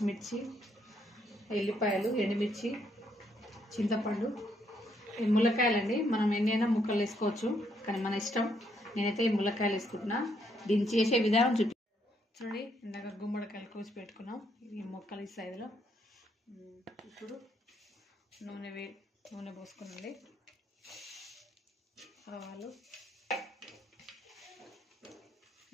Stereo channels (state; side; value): normal; both; correlation 0.73